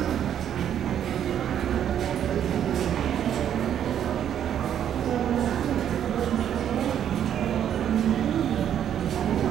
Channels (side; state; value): left; quieter; 9.7 dB